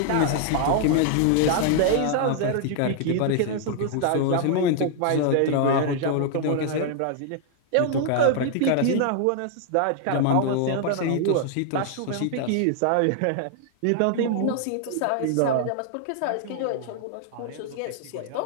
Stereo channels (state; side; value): different; both; correlation 0.00